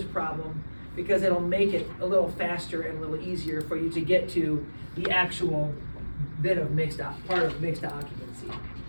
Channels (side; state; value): both; inverted; correlation -1.00